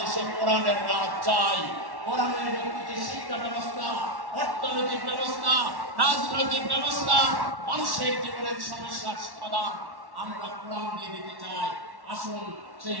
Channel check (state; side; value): late; left; 1.1 ms